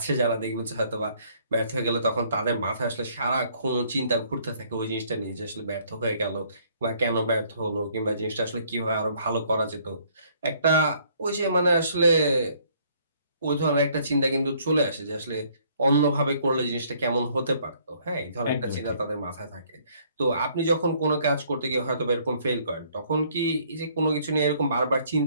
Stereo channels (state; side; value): inverted; both; correlation -0.63